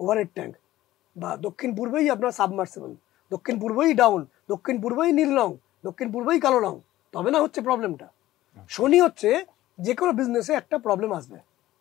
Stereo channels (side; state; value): right; quieter; 15.4 dB